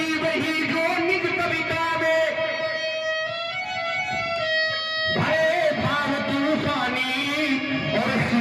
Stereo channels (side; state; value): both; identical; correlation 1.00